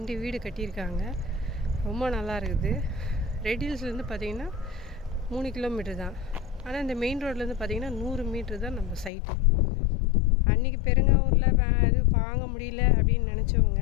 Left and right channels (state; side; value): drops out; right; at 9.1 s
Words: வீடு கட்டியிருக்காங்க, ரொம்ப நல்லா இருக்குது. ரெடில்ஸ்லேருந்து பார்த்திங்கன்னா 3 கிலோமீட்டர் தான். ஆனால் இந்த மெயின் ரோட்லேருந்து பார்த்திங்கன்னா 100 மீட்ரு தான் நம்ம சைட்டு. அன்றைக்கி பெருங்காவூரில் இது வாங்க முடியல அப்படின்னு நினச்சவங்க